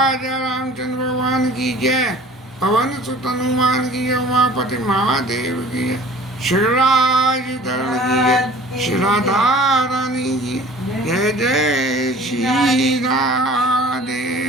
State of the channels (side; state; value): both; normal; correlation 0.47